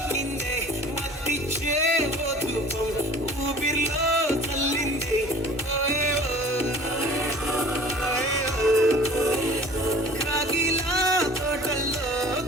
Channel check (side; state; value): both; normal; correlation 0.46